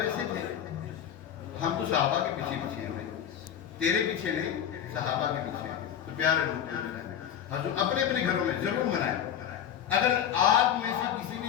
تھے, ہم تو صحابہ کے پیچھے پیچھے ہیں بھائی, تیرے پیچھے نہیں, صحابہ کے پیچھے ہیں. تو پیارے لوگ حضور اپنے اپنے گھروں میں ضرور منائیں. اگر آپ میں سے کسی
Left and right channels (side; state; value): right; quieter; 9.4 dB